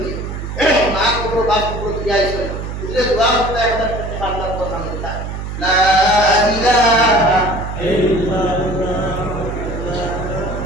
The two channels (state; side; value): noise; right; hum, 6 dB below the sound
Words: না কোনো বাপ কোনো দিয়া আইছে বুঝলে দোয়া করতে 1000 টাকা আল্লাহ কথা বলতা লা ইলাহা ইল্লাল্লাহ